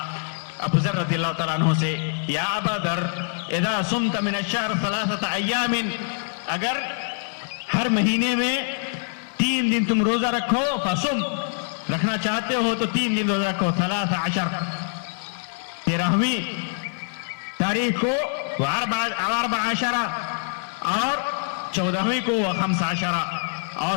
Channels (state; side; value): silent; right; 62 dB below the other